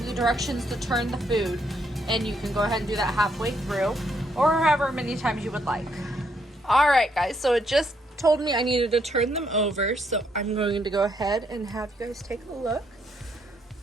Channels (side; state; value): both; normal; correlation 0.73